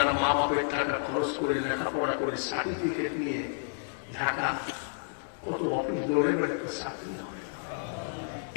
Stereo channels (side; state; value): right; silent; digital silence